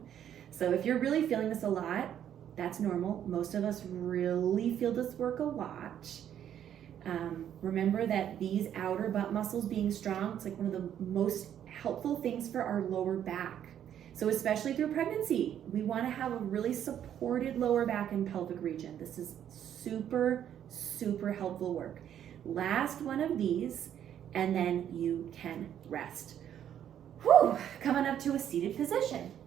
So if you're really feeling this a lot, that's normal. Most of us really feel this work a lot. Remember that these outer butt muscles being strong, it's like one of the most helpful things for our lower back. So especially through pregnancy, we want to have a really supported lower back and pelvic region. This is super, super helpful work. Last one of these, and then you can rest. Whew, coming up to a seated position.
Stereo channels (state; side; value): quieter; left; 10.0 dB